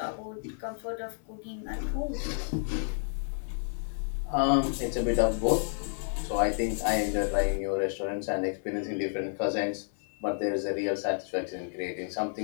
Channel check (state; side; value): silent; right; 57 dB below the other